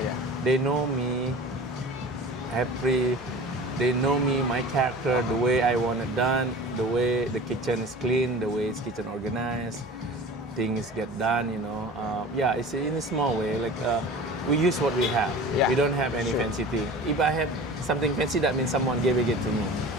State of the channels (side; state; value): both; normal; correlation 0.39